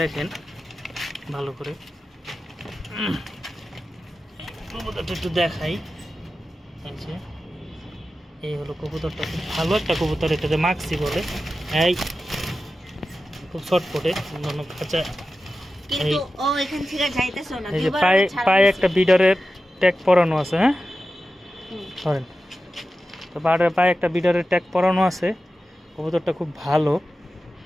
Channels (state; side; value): normal; both; correlation 0.93